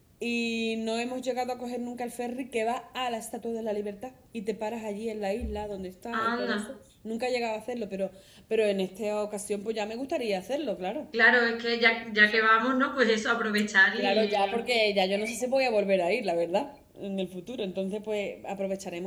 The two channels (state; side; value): identical; both; correlation 1.00